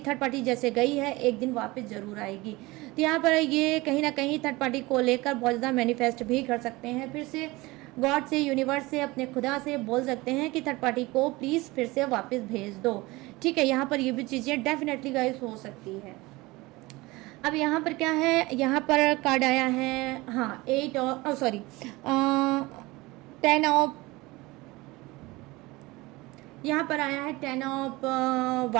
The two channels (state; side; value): quieter; left; 21.7 dB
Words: थर्ड पार्टी जैसे गई है एक दिन वापस ज़रूर आएगी। तो यहाँ पर ये कहीं ना कहीं थर्ड पार्टी को लेकर बहुत ज़्यादा मैनिफेस्ट भी कर सकते हैं, फिर से गॉड से, यूनिवर्स से, अपने खुदा से बोल सकते हैं कि थर्ड पार्टी को प्लीज़ फिर से वापस भेज दो, ठीक है। यहाँ पर ये भी चीज़ें डेफिनेटली गाइस हो सकती है। अब यहाँ पर क्या है, यहाँ पर कार्ड आया है, हाँ 8 और सॉरी 10 ऑफ, यहाँ पर आया है 10 ऑफ